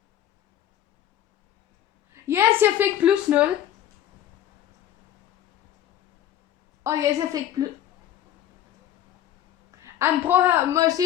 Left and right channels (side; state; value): right; quieter; 11.5 dB